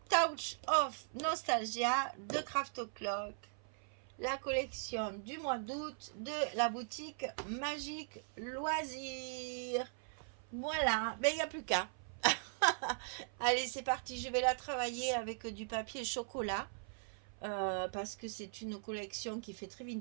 Touch of Nostalgia de Craft O'Clock. La collection du mois d'août de la boutique Magique Loisirs. Voilà, ben il n'y a plus qu'à. Allez, c'est parti, je vais la travailler avec du papier chocolat. Parce que c'est une collection qui fait très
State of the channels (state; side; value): silent; left; 52 dB below the other